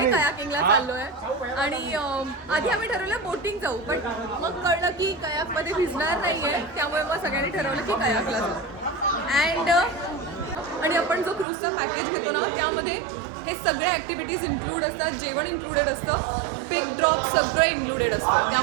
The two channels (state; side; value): drops out; left; at 11.5 s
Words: कयाकिंगला चाललो आहे आणि आधी आम्ही ठरवलं बोटिंग जाऊ, बट मग कळलं की कयाकमध्ये भिजणार नाही आहे, त्यामुळे मग सगळ्यांनी ठरवलं की कयाकला जाऊ. आणि आपण जो क्रूजचा पॅकेज घेतो ना त्यामध्ये हे सगळे ॲक्टिव्हिटीज इन्क्लूड असतात, जेवण इन्क्लुडेड असतं, पिक ड्रॉप सगळं इन्क्लुडेड असतं,